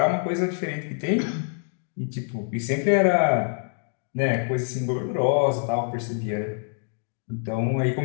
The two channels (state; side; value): silent; right; digital silence